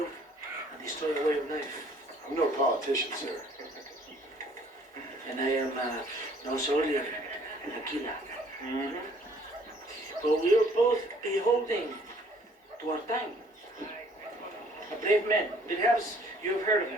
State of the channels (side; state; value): both; normal; correlation 0.59